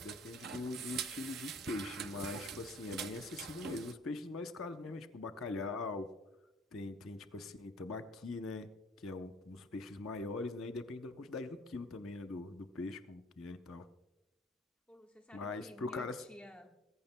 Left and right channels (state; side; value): normal; both; correlation 0.53